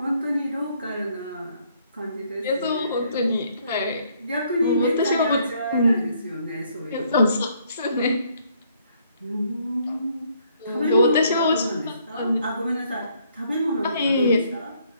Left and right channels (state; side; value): inverted; both; correlation -0.68